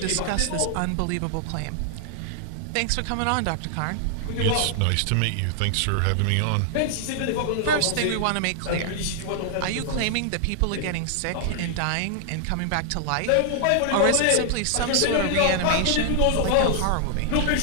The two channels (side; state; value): both; different; correlation 0.00